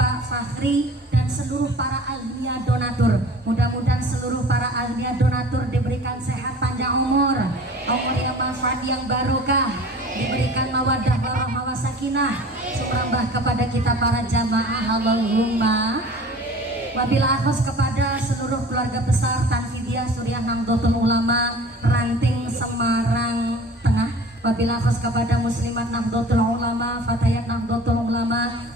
Fakhri dan seluruh para ahliya donatur. Mudah-mudahan seluruh para ahliya donatur diberikan sehat panjang umur yang manfaat yang barokah, diberikan mawaddah warahmah wasakinah, sumrambah kepada kita para jamaah. Allahumma. Wabillahi khos kepada seluruh keluarga besar Tanfidiyah Suriah Nahdlatul Ulama Ranting Semarang Tengah. Wabillahi khos kepada Muslimat Nahdlatul Ulama, Fatayat Nahdlatul Ulama.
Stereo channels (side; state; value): both; normal; correlation 0.44